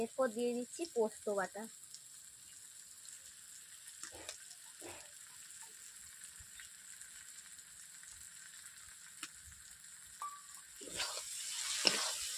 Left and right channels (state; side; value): identical; both; correlation 1.00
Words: এরপর দিয়ে দিচ্ছি পোস্ত বাটা।